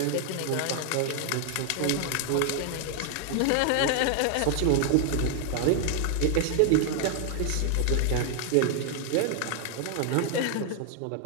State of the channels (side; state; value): both; different; correlation 0.00